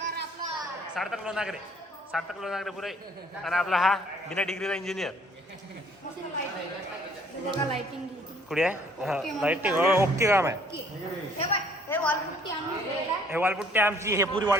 सार्थक लोणागरे पुरे. आणि आपला हा बिना डिग्रीचा इंजिनियर कुठे आहे लाइटिंग ओके काम आहे. हे वॉलपुट्टी आमची हे पुरी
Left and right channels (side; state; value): both; normal; correlation 0.60